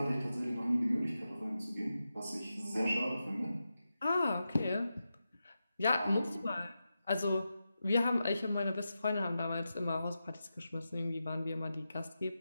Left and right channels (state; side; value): inverted; both; correlation -0.90